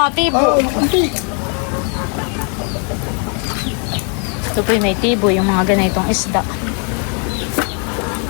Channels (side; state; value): right; quieter; 39.4 dB